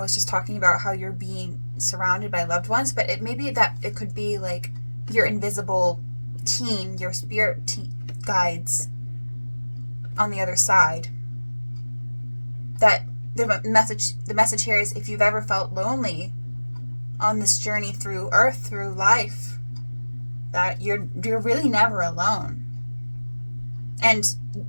was just talking about how you're being surrounded by loved ones, but it may be that it could be like your invisible team, your spirit guides on the other side. That the message here is, if you've ever felt lonely on this journey through Earth, through life, that you're really never alone. And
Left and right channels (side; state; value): both; inverted; correlation -1.00